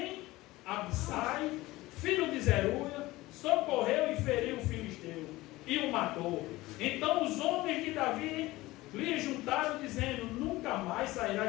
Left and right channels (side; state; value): right; quieter; 18.9 dB